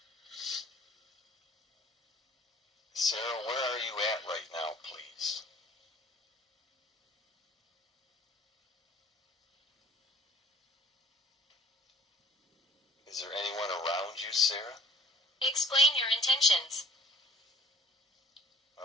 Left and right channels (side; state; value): both; normal; correlation 0.52